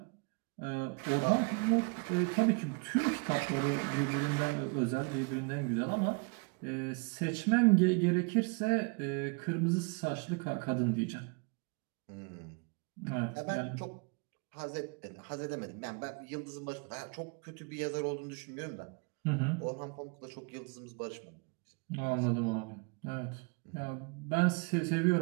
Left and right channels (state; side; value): quieter; left; 31.9 dB